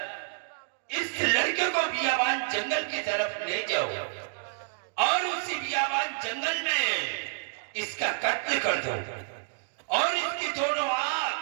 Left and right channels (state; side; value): silent; left; digital silence